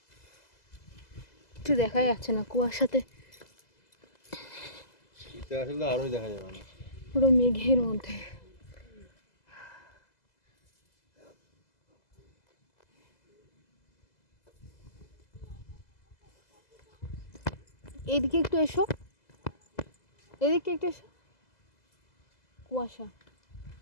একটু দেখা যাচ্ছে না কুয়াশাতে, এটা আসলে আরো দেখা যাবে না, পুরো মেঘের মধ্যে। এদিকে একটু এসো, এদিকে একটু এসো। কুয়াশা,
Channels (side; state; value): right; late; 2.0 ms